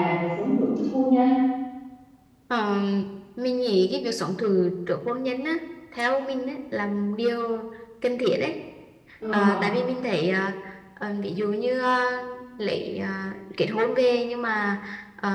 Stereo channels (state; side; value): identical; both; correlation 1.00